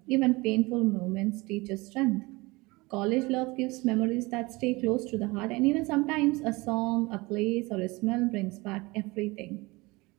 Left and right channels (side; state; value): left; quieter; 23.3 dB